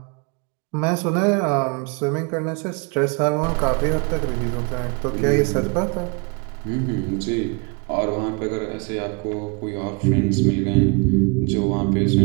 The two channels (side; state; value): left; quieter; 32.8 dB